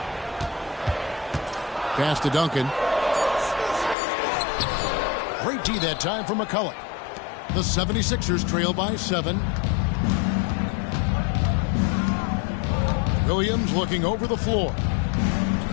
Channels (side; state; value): right; drops out; at 4.0 s